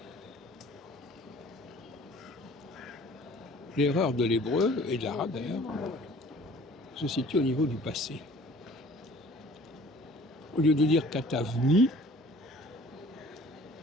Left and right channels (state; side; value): normal; both; correlation 0.50